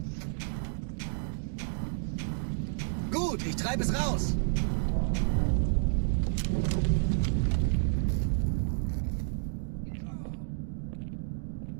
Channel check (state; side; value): silent; left; digital silence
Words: Gut, ich treibe es raus.